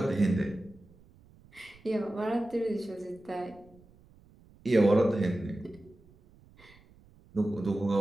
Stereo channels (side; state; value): right; noise; rumble, 27 dB below the sound